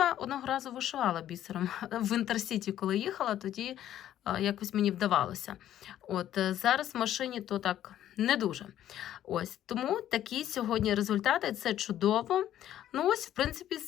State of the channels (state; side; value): quieter; right; 11.8 dB